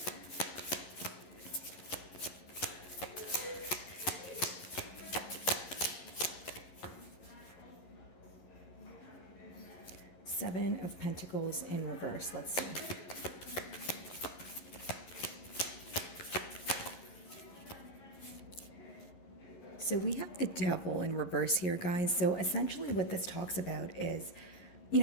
Seven of Pentacles in reverse. Let's see. So we have the Devil in reverse here, guys. So essentially what this talks about is,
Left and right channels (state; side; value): late; right; 11 ms